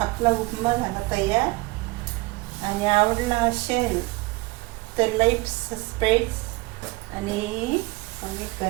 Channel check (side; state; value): left; quieter; 23.0 dB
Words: आपला उपमा झाला तयार. आणि आवडला असेल तर लाईक, सबस्क्राईब आणि कमेंट